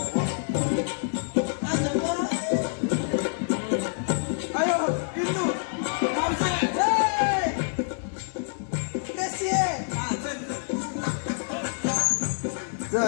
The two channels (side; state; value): right; silent; digital silence